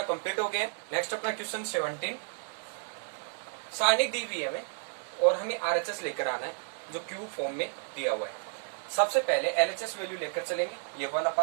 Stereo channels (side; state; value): left; silent; digital silence